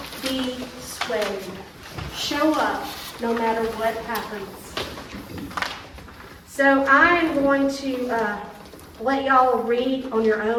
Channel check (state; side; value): identical; both; correlation 1.00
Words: be swayed. Show up no matter what happens. So I'm going to let y'all read on your